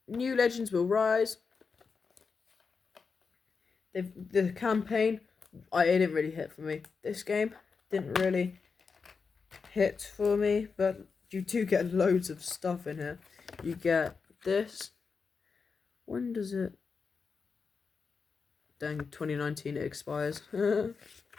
New Legends Will Rise. The campaign, it didn't really hit for me. This game didn't really hit for me, but you do get loads of stuff in here. You get this. When does it? Dang, 2019 it expires. Put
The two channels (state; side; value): quieter; right; 5.1 dB